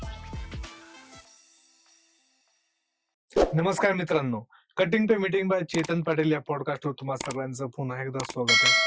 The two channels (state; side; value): identical; both; correlation 1.00